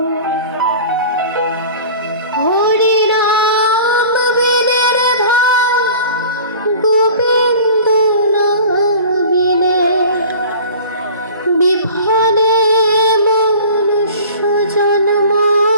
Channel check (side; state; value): both; inverted; correlation -0.42